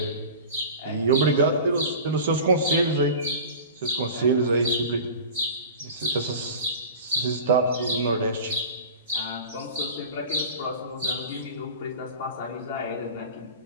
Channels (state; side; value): inverted; both; correlation -0.36